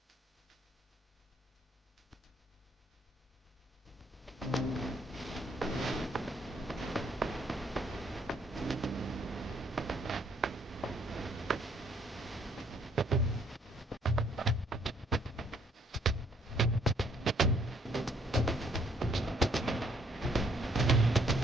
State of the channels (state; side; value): normal; both; correlation 0.65